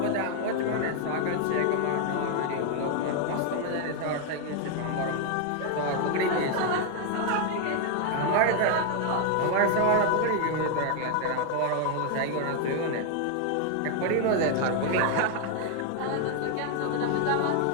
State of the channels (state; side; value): different; both; correlation 0.00